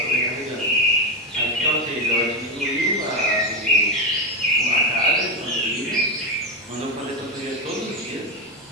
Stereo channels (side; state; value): both; normal; correlation 0.11